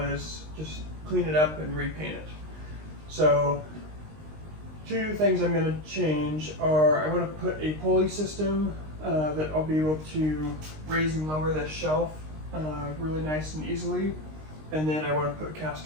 as just clean it up and repaint it. So two things I'm going to change are I want to put a pulley system that I'll be able to raise and lower this shelf really nice and easily. And then I want to put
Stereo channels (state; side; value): late; left; 19 ms